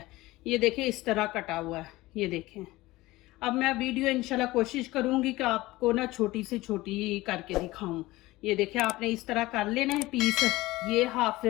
ये देखें इस तरह कटा हुआ है, ये देखें। अब मैं वीडियो इंशाल्लाह कोशिश करूंगी कि आपको ना छोटी से छोटी करके दिखाऊं। ये देखिए, आपने इस तरह कर लेना है पीस। ये हाफ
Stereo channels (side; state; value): right; quieter; 19.0 dB